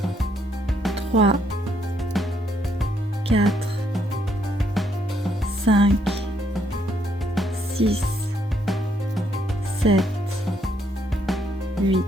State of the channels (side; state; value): both; normal; correlation 0.73